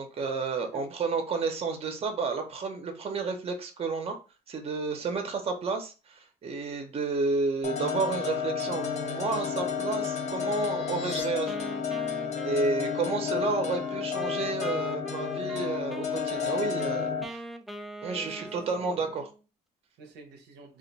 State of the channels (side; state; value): both; normal; correlation 0.33